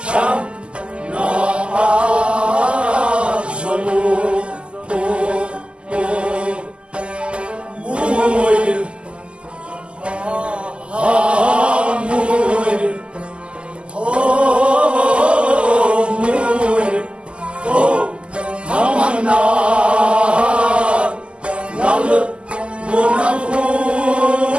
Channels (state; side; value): late; left; 0.052 ms